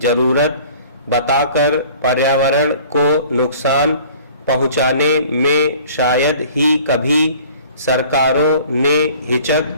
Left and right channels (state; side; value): inverted; both; correlation -0.49